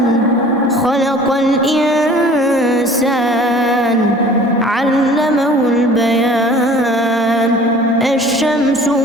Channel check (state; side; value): normal; both; correlation 0.47